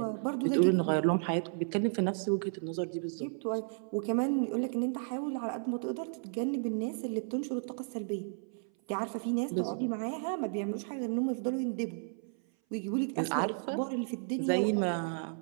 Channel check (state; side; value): silent; left; 56 dB below the other